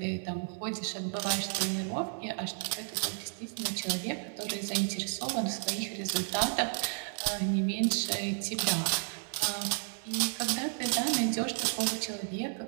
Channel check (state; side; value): silent; left; digital silence